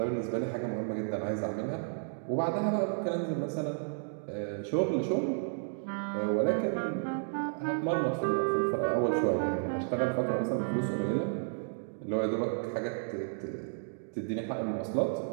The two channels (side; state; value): left; silent; digital silence